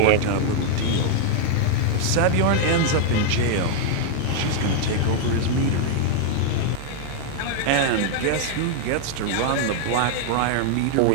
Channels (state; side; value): different; both; correlation -0.01